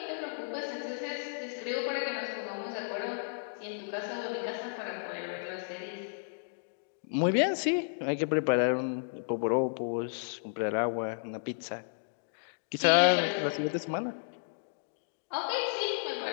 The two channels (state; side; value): silent; right; digital silence